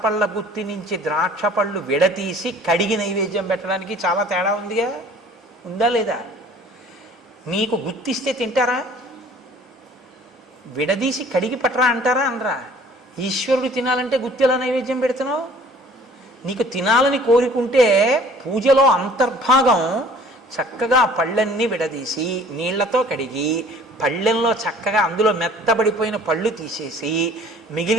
పళ్ళ గుత్తి నుంచి ద్రాక్ష పళ్ళు విడతీసి కడిగి నైవేద్యం పెట్టడానికి చాలా తేడా ఉందిగా. ఉందా లేదా? మీకు గుత్తిస్తే తింటారా? విడదీసి కడిగి పట్టరా అంటారా? అనరా? ఈశ్వరుడు తినాలంటే గుత్తిలా నైవేద్యం పెడుతున్నావు. నీకు తినాలని కోరుకుంటే పూజలో అంతర్భాగం చక్కగా పళ్ళన్నీ విడదీసి నీళ్లతో కడిగి పళ్ళెంలో చక్కగా అందులో మెత్తబడిపోయిన పళ్ళు తీసేసి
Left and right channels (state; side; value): normal; both; correlation 0.52